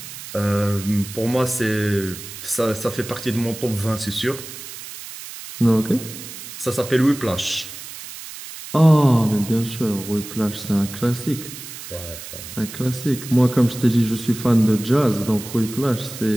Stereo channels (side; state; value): right; noise; hiss, 12 dB below the sound